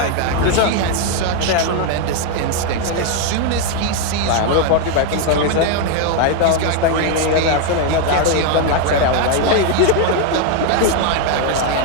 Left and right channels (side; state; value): both; different; correlation 0.01